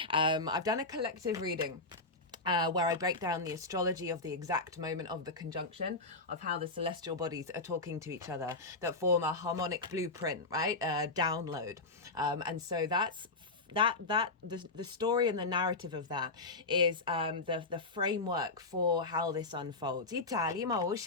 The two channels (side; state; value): right; quieter; 3.3 dB